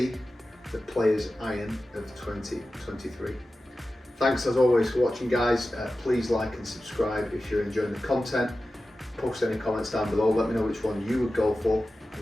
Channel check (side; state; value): both; normal; correlation 0.94